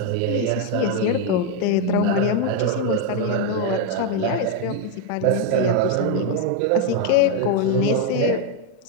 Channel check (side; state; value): both; different; correlation 0.01